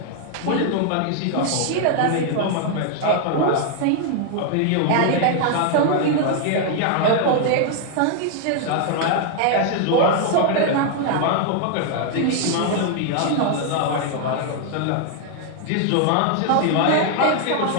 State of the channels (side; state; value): both; different; correlation 0.00